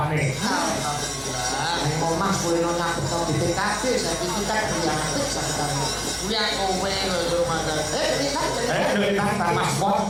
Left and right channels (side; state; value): both; identical; correlation 1.00